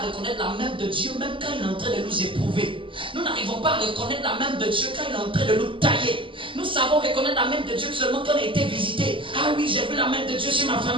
reconnaître la main de Dieu, même quand il est en train de nous éprouver. Nous n'arrivons pas à reconnaître la main de Dieu quand il est en train de nous tailler. Nous savons reconnaître la main de Dieu seulement quand on a été visité. Ah oui, j'ai vu la main de Dieu sur ma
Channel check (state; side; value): late; left; 0.25 ms